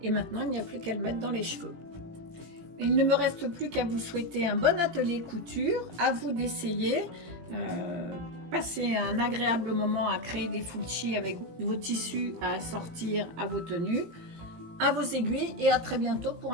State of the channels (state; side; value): late; left; 18 ms